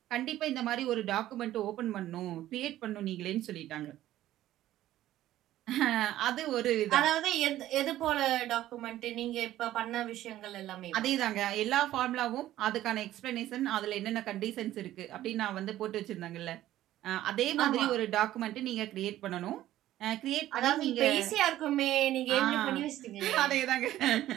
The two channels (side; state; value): left; quieter; 13.9 dB